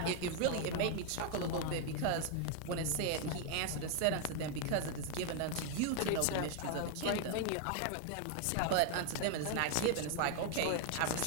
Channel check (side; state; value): both; different; correlation 0.00